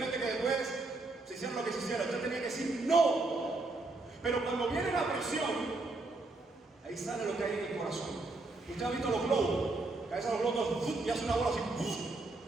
que después se hiciera lo que se hiciera, usted tenía que decir ¡no! Pero cuando viene la presión, ahí sale lo que hay en el corazón. Usted ha visto los globos, que a veces los globos y hace una bola así.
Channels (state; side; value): quieter; left; 3.3 dB